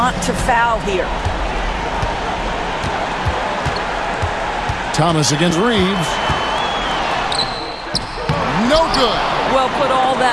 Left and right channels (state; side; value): identical; both; correlation 1.00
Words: to foul here. Thomas against Reeves. No good. Well, put all